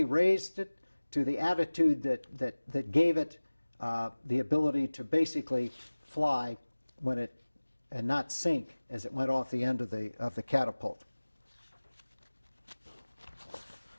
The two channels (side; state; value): both; inverted; correlation -1.00